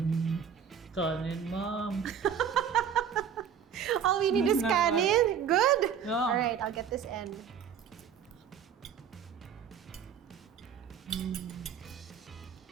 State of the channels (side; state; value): left; quieter; 7.8 dB